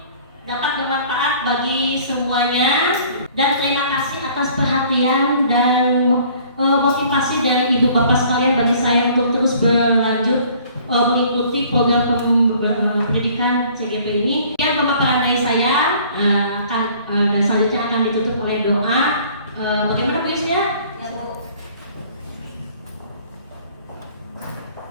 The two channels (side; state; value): both; inverted; correlation -0.54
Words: dapat bermanfaat bagi semuanya, dan terima kasih atas perhatian dan motivasi dari Ibu Bapak sekalian bagi saya untuk terus berlanjut mengikuti program pendidikan CGP ini. Yang pemaparan dari saya dan selanjutnya akan ditutup oleh doa. Bagaimana Bu Yusnya? ya Bu.